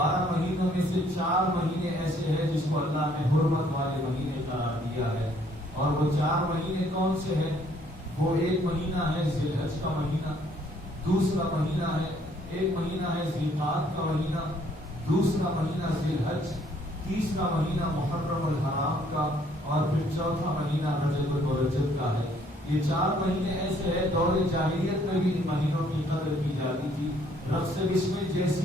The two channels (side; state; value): both; normal; correlation 0.63